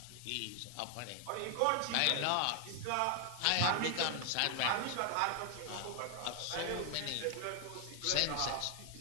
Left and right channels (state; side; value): different; both; correlation 0.00